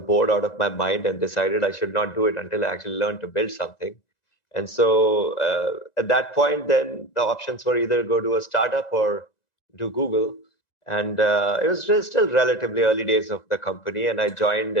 bored out of my mind and decided I should not do it until I actually learned to build something. And so at that point, then the options were either go to a startup or do Google. And it was still relatively early days of the company. And I joined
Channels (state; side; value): late; right; 1.9 ms